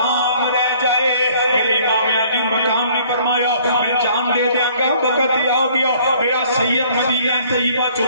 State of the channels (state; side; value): inverted; both; correlation -0.58